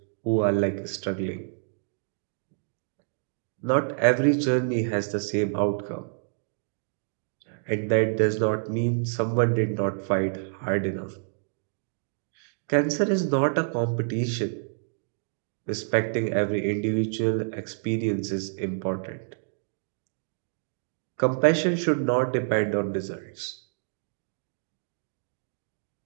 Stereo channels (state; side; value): silent; left; digital silence